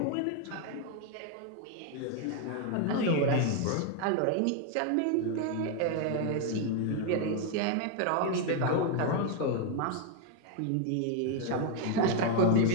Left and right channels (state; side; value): different; both; correlation 0.01